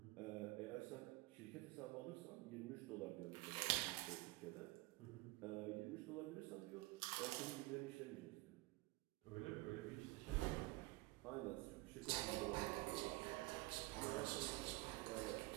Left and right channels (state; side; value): quieter; left; 22.2 dB